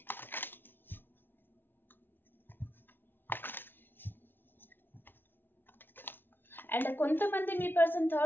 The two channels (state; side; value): late; right; 0.10 ms